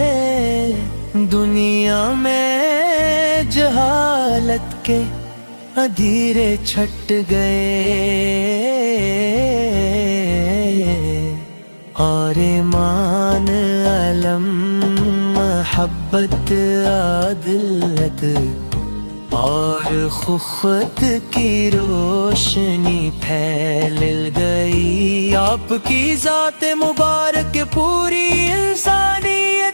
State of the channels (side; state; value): both; inverted; correlation -1.00